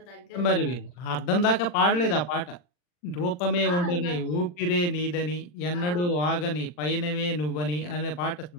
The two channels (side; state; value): right; late; 40 ms